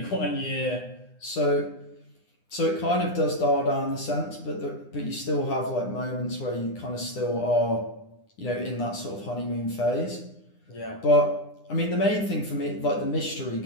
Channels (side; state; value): right; late; 9.9 ms